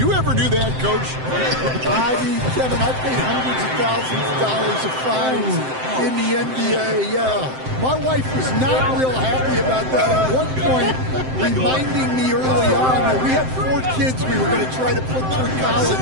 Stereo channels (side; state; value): left; late; 7.7 ms